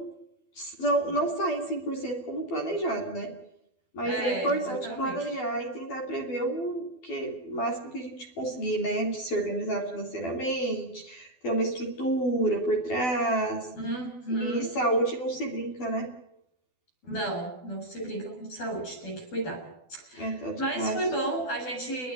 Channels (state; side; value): late; right; 12 ms